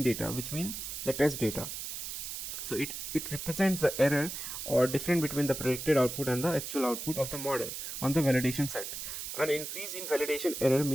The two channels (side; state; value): right; noise; hiss, 6 dB below the sound